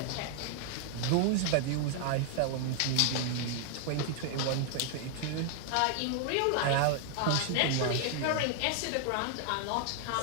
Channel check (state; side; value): different; both; correlation 0.00